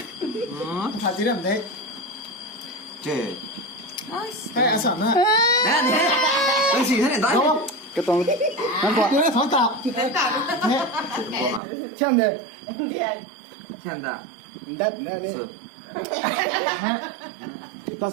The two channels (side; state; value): left; drops out; at 11.6 s